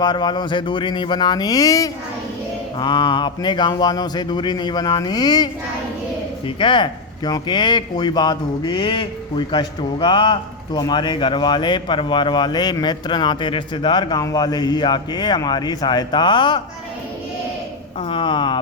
वालों से दूरी नहीं बनानी चाहिए, हाँ, अपने गांव वालों से दूरी नहीं बनानी चाहिए। ठीक है, क्योंकि कोई बात होगी, कोई कष्ट होगा तो हमारे घर वाले, परिवार वाले, मित्र, नाते रिश्तेदार, गांव वाले ही आके हमारी सहायता करेंगे।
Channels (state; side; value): quieter; right; 3.6 dB